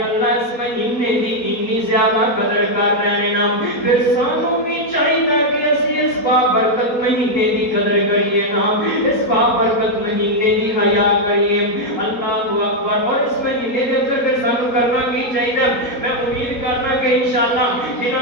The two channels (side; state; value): right; late; 4.2 ms